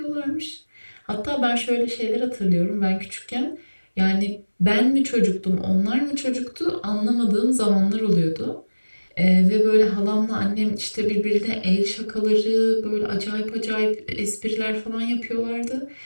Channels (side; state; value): both; inverted; correlation -1.00